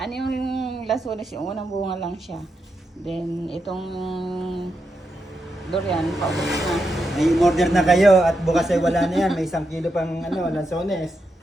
yung lasunis, yung unang bunga lang siya. Then, itong durian, paubos na. Ay, order na kayo at bukas ay wala na yan. May 1 kilo pang lansones.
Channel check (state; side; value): normal; both; correlation 0.85